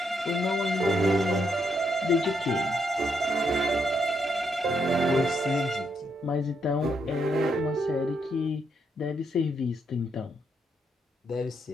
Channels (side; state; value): both; normal; correlation 0.78